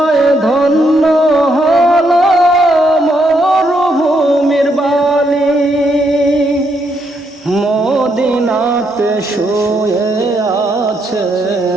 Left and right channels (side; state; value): both; normal; correlation 0.76